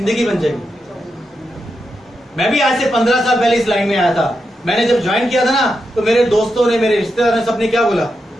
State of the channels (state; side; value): normal; both; correlation 0.86